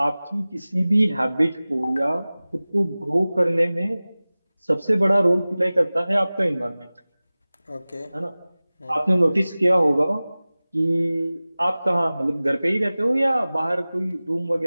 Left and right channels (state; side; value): inverted; both; correlation -0.98